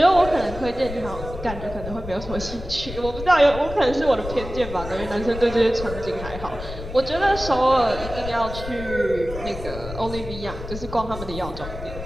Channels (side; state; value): left; noise; rumble, 10 dB below the sound